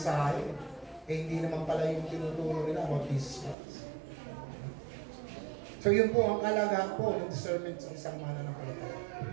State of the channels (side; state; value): left; drops out; at 3.6 s